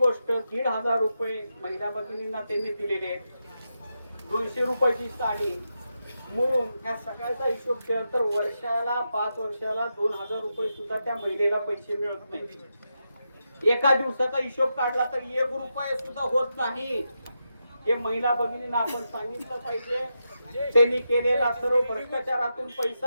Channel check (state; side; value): inverted; both; correlation -0.86